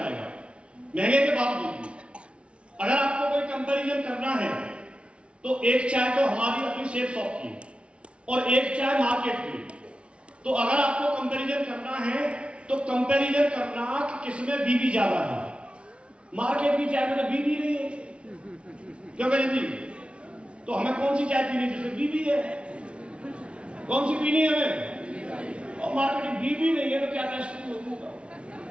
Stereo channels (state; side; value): late; left; 0.059 ms